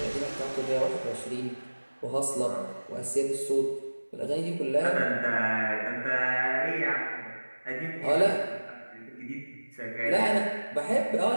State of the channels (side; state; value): both; inverted; correlation -1.00